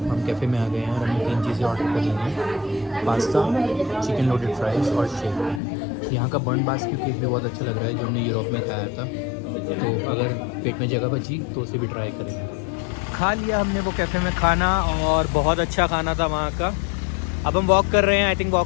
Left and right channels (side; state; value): right; drops out; at 5.6 s